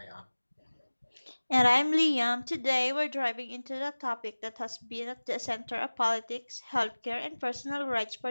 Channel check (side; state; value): both; inverted; correlation -1.00